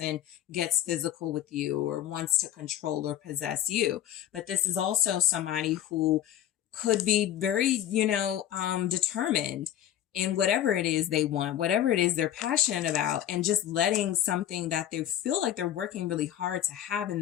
gets physical with you or wants to control or possess you, but this is also somebody who could be very, determined in whatever it is they want, whatever it is they're passionate about, and just letting something that they feel like they're working really hard to have in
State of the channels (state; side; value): quieter; right; 11.5 dB